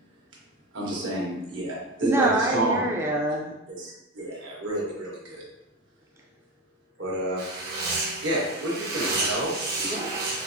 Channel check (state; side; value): normal; both; correlation 0.20